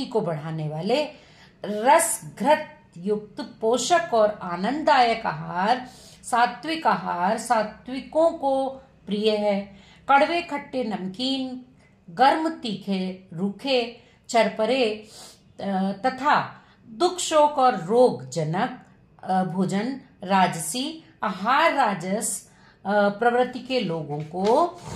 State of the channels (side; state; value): both; identical; correlation 1.00